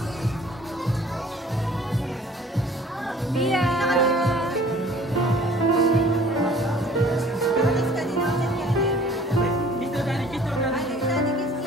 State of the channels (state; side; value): normal; both; correlation 0.51